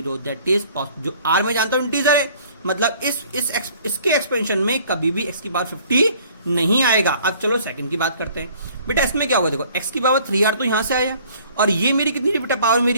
दैट इज जो r में जानता हूं इंटीजर है, मतलब इसके एक्सपेंशन में कभी भी x की पावर 50 नहीं आएगा। अब चलो सेकंड की बात करते हैं। बेटा इसमें क्या होगा? देखो x की पावर 3r तो यहां से आया और ये मेरी कितनी थी बेटा? पावर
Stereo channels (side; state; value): both; inverted; correlation -0.55